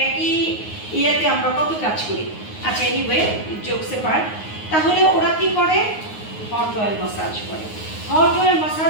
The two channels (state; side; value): late; right; 9.5 ms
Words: একই ইয়াতে আমরা কত কাজ করি। আচ্ছা, এনিওয়ে, জোকসে পার্ট। তাহলে ওরা কি করে? হট অয়েল মাসাজ করে। হট অয়েল